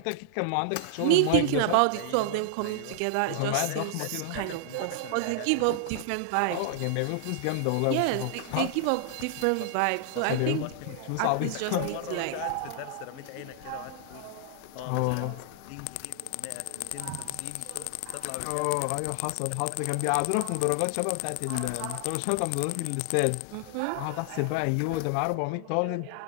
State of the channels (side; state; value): both; different; correlation -0.01